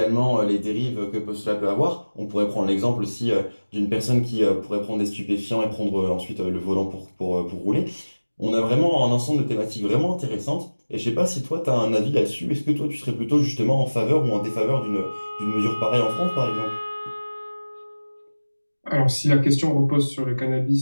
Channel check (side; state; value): both; inverted; correlation -1.00